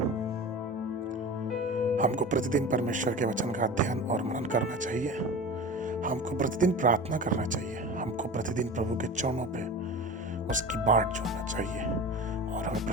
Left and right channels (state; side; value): normal; both; correlation 0.33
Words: हमको प्रतिदिन परमेश्वर के वचन का अध्ययन और मनन करना चाहिए। हमको प्रतिदिन प्रार्थना करना चाहिए। हमको प्रतिदिन प्रभु के चरणों पे उसकी बाट जोड़ना चाहिए और हमें